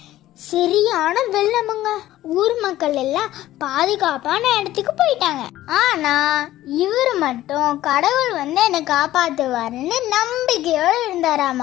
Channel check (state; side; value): quieter; right; 14.6 dB